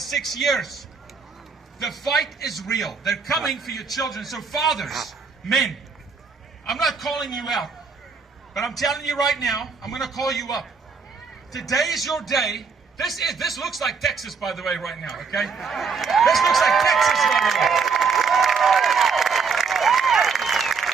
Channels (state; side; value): quieter; left; 5.2 dB